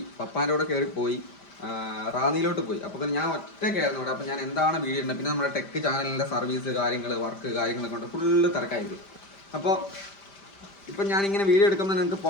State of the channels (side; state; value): right; late; 5.1 ms